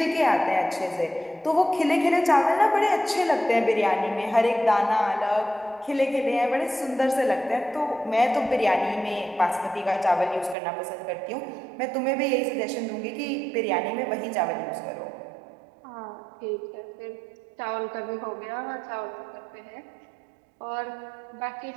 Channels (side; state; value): left; drops out; at 10.6 s